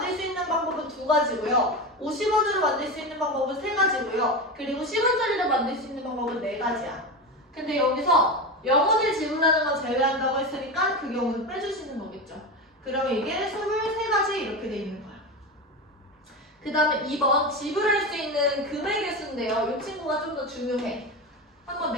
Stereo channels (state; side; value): normal; both; correlation 0.20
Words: 수 있는 방법은 2가지고요. 50원으로 만들 수 있는 방법은 3가지고요. 그리고 10원짜리로 만들 수 있는 방법은 4가지야. 근데 여기서 0원을 지불하는 건 제외한다고 했으니까 그 경우는 빼주시는 거겠죠. 그러면 이게 23가지 이렇게 돼 있는 거야. 그 다음에 2번 지불할 수 있는 금액의 수인데요. 이 친구가 좀 더 중요해. 한번